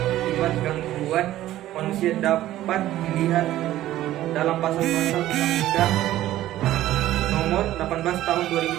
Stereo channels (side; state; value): left; quieter; 14.2 dB